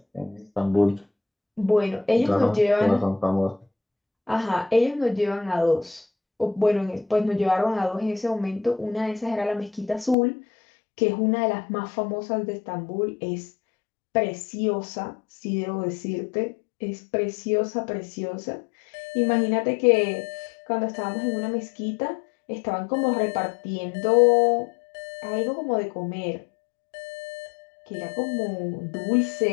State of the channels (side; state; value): right; drops out; at 10.2 s